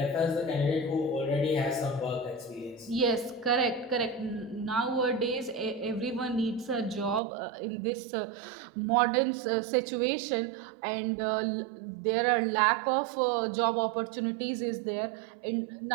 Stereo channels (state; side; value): drops out; left; at 7.2 s